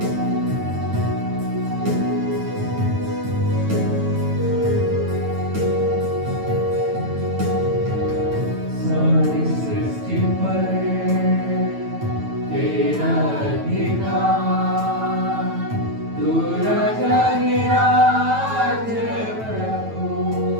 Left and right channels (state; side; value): late; left; 9.1 ms